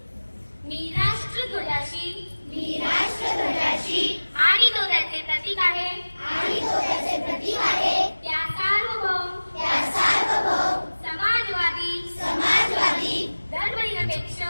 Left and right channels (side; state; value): both; inverted; correlation -1.00